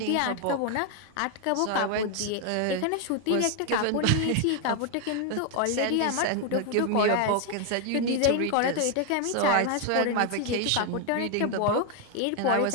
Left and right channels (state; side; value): different; both; correlation 0.00